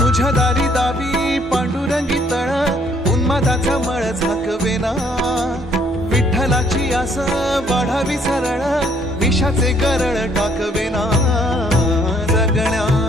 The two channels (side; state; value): both; normal; correlation 0.65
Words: तुझ्या दारी दावी पांडुरंगी तळ उन्मादाचा मळ झाकवेना विठ्ठलाची आस वाढावी सरळ विषाचे गरळ टाकवेना